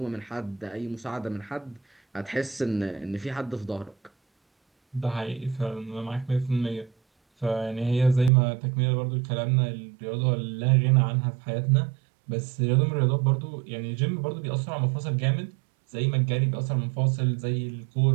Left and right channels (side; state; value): left; drops out; at 8.3 s